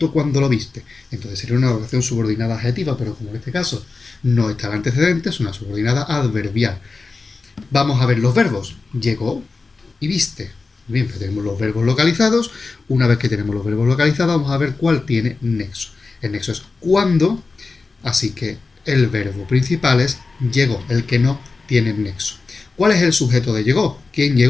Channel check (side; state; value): right; quieter; 4.0 dB